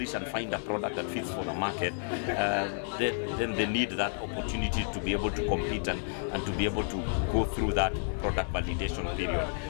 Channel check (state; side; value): silent; right; 57 dB below the other